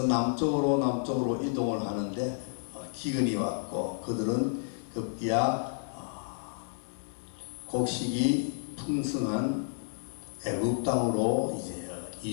남쪽으로 이동을 하는데 기근이 왔고 그들은 급기야 곡식이 풍성한 애굽 땅으로 이제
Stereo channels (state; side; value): silent; right; digital silence